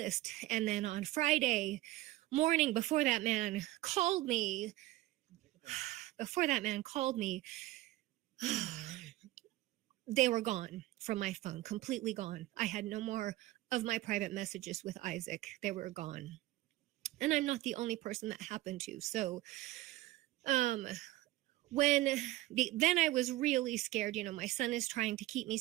And then on Friday morning, before that man called me, they were gone from my phone, completely gone. I had no more of my private messages with Isaac. They were gone. And I'm not the only person that happened to. So, then I was really scared. You know, my son is trying to keep me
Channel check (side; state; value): left; quieter; 17.4 dB